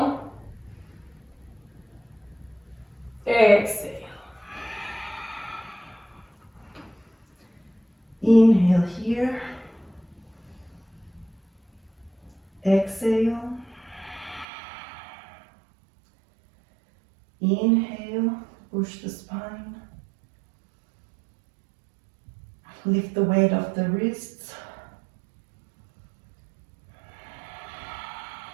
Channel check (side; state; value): left; drops out; at 14.5 s